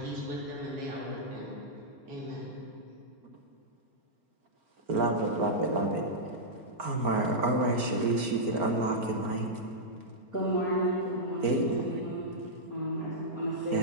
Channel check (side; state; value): left; late; 4.5 ms